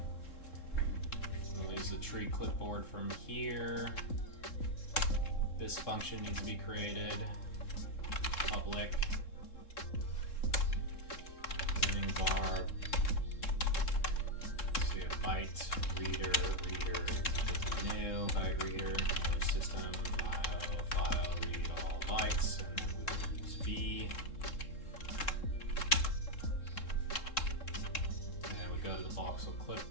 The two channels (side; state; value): right; late; 3.7 ms